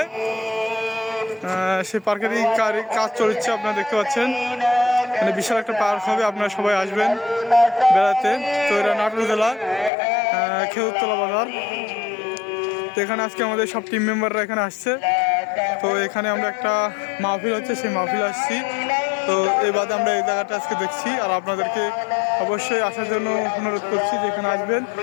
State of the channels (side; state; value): right; drops out; at 9.9 s